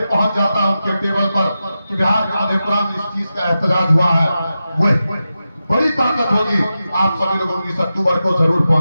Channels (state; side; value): inverted; both; correlation -0.91